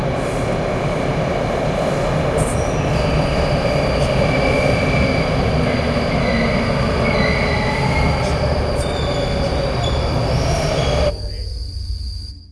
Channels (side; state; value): both; identical; correlation 1.00